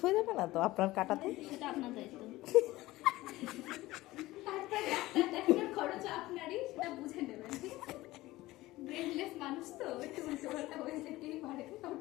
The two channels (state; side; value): quieter; right; 18.0 dB